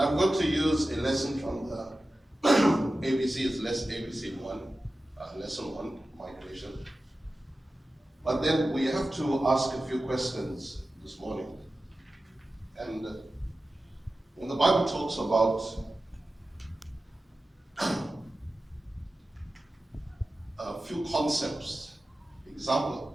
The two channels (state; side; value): normal; both; correlation 0.94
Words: going to use a lesson from the ABC, it's ABC 1, lesson 1, migration. But then we have to ask a few questions this morning. And when the Bible talks about a few concepts,